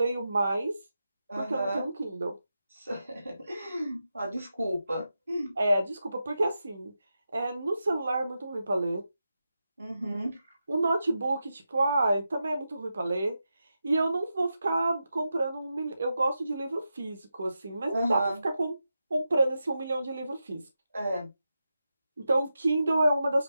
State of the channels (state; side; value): inverted; both; correlation -0.89